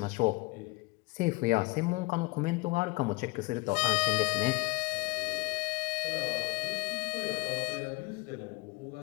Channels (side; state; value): right; quieter; 25.0 dB